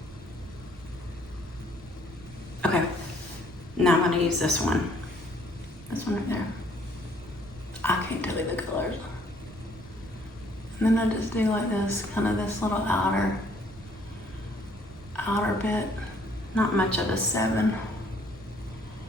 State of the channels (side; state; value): right; noise; rumble, 20 dB below the sound